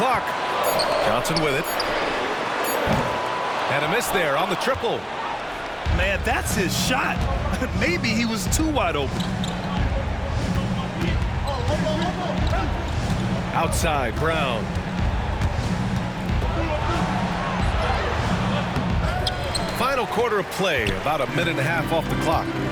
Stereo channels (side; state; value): both; identical; correlation 1.00